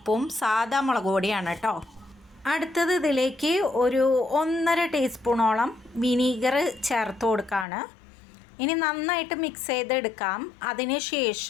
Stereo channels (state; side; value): drops out; right; at 7.7 s